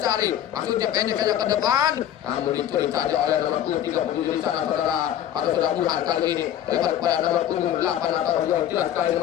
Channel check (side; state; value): right; quieter; 11.0 dB